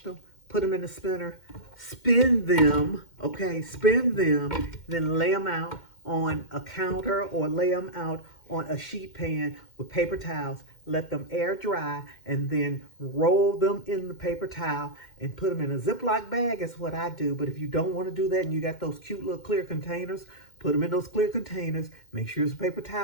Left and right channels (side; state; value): right; late; 2.1 ms